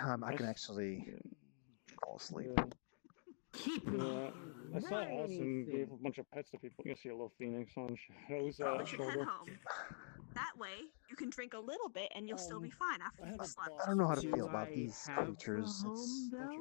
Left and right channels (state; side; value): silent; right; digital silence